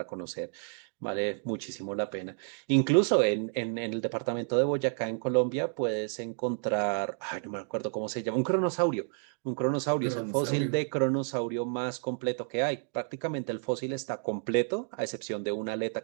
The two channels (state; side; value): silent; left; 56 dB below the other